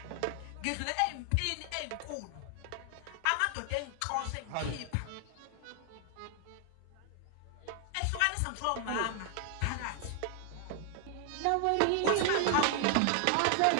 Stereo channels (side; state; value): both; different; correlation 0.00